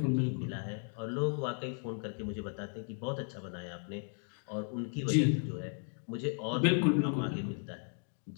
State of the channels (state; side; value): silent; right; 54 dB below the other